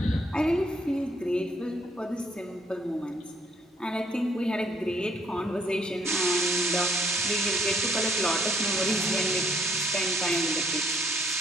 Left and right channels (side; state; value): both; normal; correlation 0.67